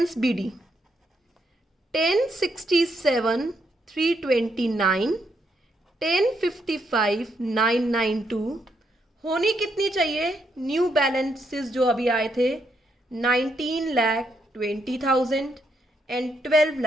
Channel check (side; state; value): both; normal; correlation 0.77